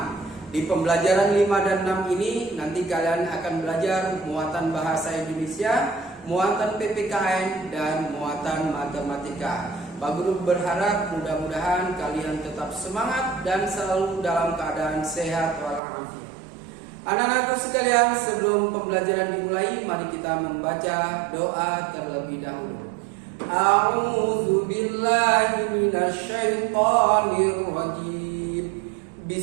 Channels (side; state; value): left; drops out; at 15.8 s